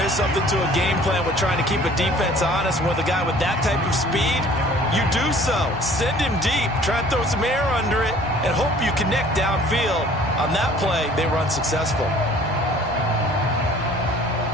is something to a game plan with trying to keep a defense honest. With a guy with that type of speed, you do so. Send him deep. Try and throw some air under it and hope you connect downfield. On that play, they run successful.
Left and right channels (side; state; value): both; normal; correlation 0.52